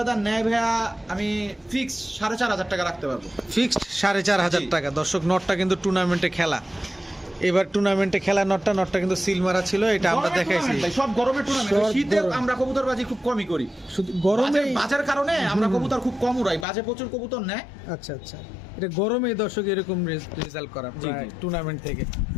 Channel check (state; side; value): drops out; right; at 16.7 s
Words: নেয় ভাইয়া, আমি ফিক্স 4500 টাকা রাখতে পারবো। ফিক্সড 4500 জি। টাকা। দর্শক নটটা কিন্তু টুর্নামেন্টে খেলা, এবার টুর্নামেন্টে খেলা নটটা কিন্তু সিল মারা ছিল, এটা আমরা গরমের দেখাইছি। tournament ভাই, সব গরমের টুর্নামেন্ট। সব শীতে গরম। আমরা কবুতরবাজি খুব কমই করি, শুধু গরমে। বাজের কারণে আমরা কবুতর খুব কম উড়াই, বাজে প্রচুর কবুতর নেয়। আচ্ছা আচ্ছা, এটা গরমে দর্শক এরকম রেজাল্ট করা জি, জি। টুর্নামেন্ট থেকে।